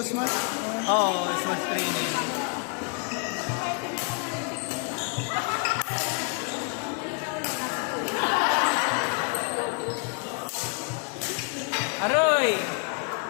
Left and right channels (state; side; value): quieter; right; 37.9 dB